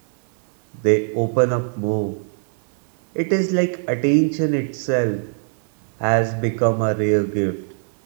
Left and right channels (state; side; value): silent; left; digital silence